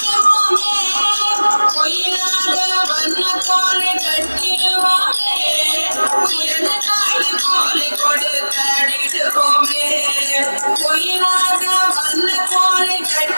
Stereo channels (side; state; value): both; inverted; correlation -1.00